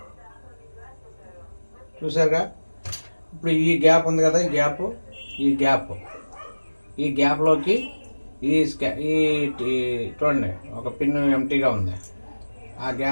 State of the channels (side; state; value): both; inverted; correlation -1.00